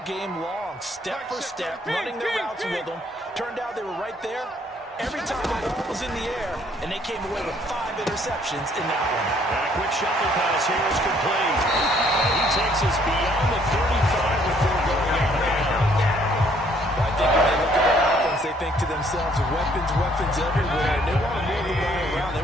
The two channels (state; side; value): normal; both; correlation 0.64